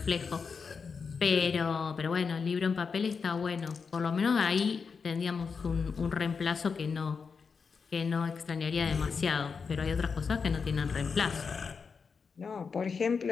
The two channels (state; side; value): quieter; right; 5.5 dB